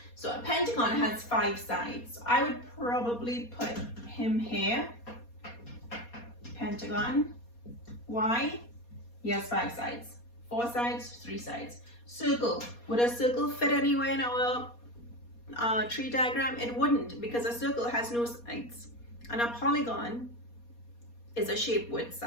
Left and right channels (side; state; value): right; late; 4.2 ms